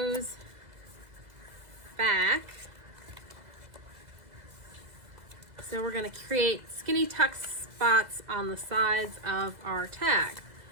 back. So we're going to create skinny tuck spots on the sides of our tag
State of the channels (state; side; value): late; left; 2.0 ms